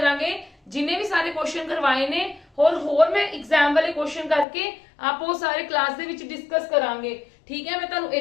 ਜਿੰਨੇ ਵੀ ਸਾਰੇ ਕੁਐਸਚਨ ਕਰਵਾਏ ਨੇ ਹੋਰ ਮੈਂ एग्जाम ਵਾਲੇ ਕੁਐਸਚਨ ਕਰਕੇ ਆਪ ਉਹ ਸਾਰੇ ਕਲਾਸ ਦੇ ਵਿੱਚ ਡਿਸਕਸ ਕਰਾਂਗੇ। ਠੀਕ ਹੈ, ਮੈਂ ਤੁਹਾਨੂੰ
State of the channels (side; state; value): right; drops out; at 4.5 s